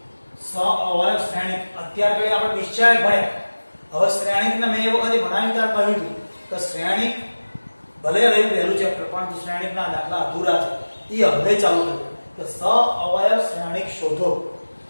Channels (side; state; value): both; inverted; correlation -1.00